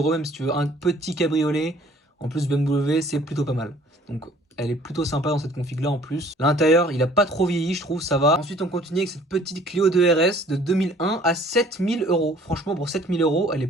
même si tu veux un petit cabriolet, en plus BMW, c'est plutôt pas mal. Donc, elle est plutôt sympa dans cette config là en plus. L'intérieur, il a pas trop vieilli, je trouve, ça va. Ensuite, on continue avec cette petite Clio 2 RS de 2001 à 7 000 euros. Franchement, pour 7 000 euros, elle est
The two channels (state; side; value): normal; both; correlation 0.55